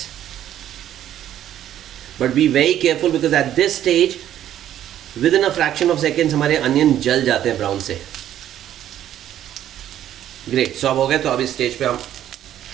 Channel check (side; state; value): left; quieter; 11.5 dB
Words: But be very careful because at this stage, within a fraction of seconds हमारे अनियन जल जाते हैं ब्राउन से. ग्रेट. सो अब हो गए. तो अब इस स्टेज पे हम